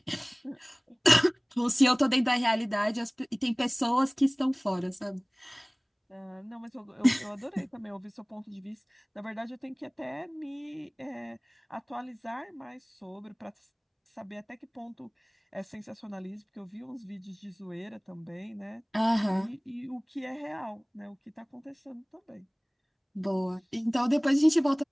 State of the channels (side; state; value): both; identical; correlation 1.00